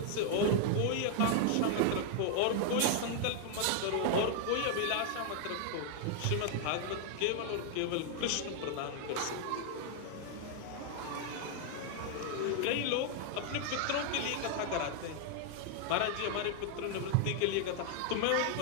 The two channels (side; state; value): both; different; correlation 0.00